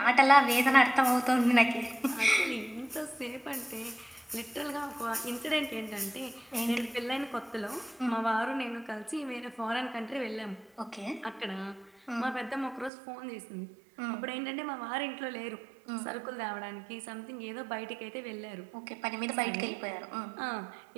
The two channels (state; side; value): drops out; left; at 12.9 s